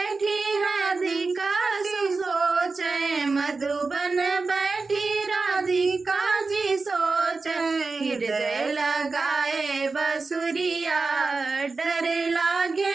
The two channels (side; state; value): left; quieter; 4.0 dB